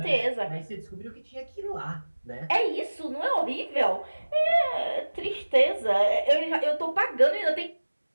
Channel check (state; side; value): inverted; both; correlation -1.00